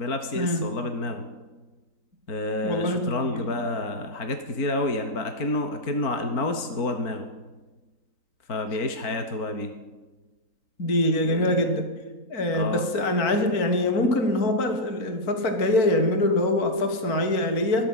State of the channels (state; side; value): late; right; 3.9 ms